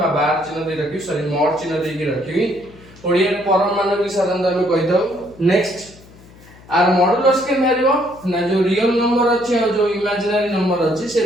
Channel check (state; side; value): noise; left; hum, 23 dB below the sound